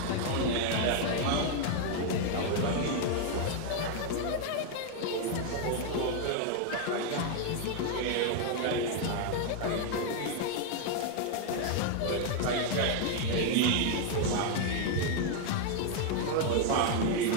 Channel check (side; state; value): both; different; correlation 0.00